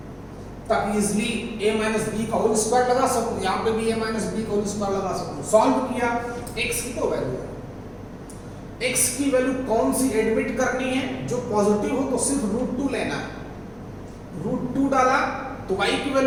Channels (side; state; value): both; identical; correlation 1.00